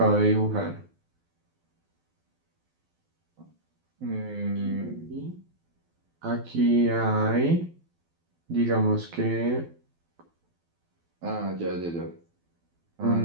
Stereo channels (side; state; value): left; late; 12 ms